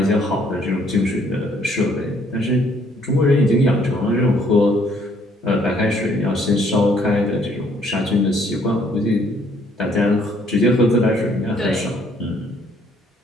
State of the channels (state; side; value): normal; both; correlation 0.65